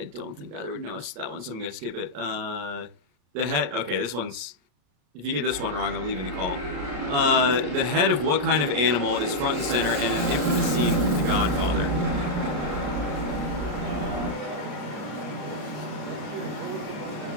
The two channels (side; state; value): left; late; 34 ms